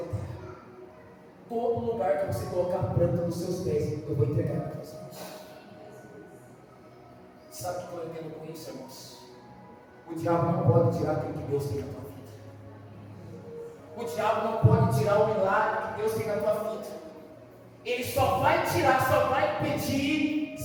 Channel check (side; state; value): both; identical; correlation 1.00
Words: todo lugar que você colocar a planta nos seus pés, eu vou entregar para você. Sabe o que eu entendo com isso, irmãos? O diabo não pode tirar aquilo que Deus tem na tua vida. O diabo não pode tirar o milagre que Deus tem na tua vida. Ele só vai tirar, só vai impedir